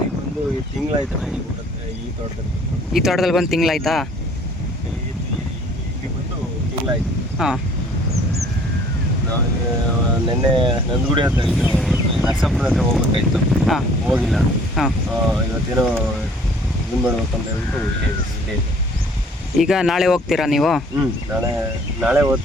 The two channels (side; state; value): both; normal; correlation 0.55